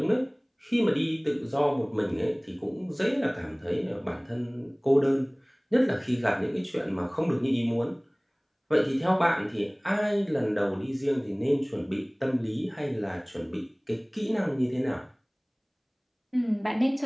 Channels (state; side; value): identical; both; correlation 1.00